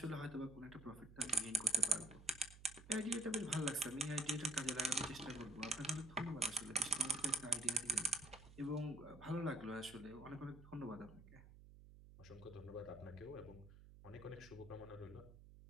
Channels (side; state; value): right; noise; hum, 18 dB below the sound